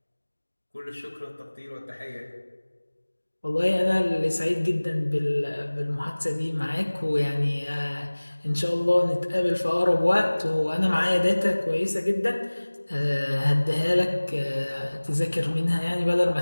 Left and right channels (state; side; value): inverted; both; correlation -1.00